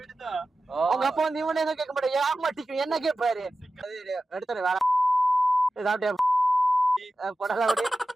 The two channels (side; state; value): both; normal; correlation 0.94